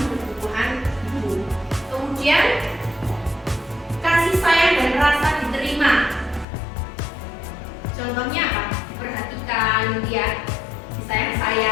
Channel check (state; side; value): drops out; right; at 6.5 s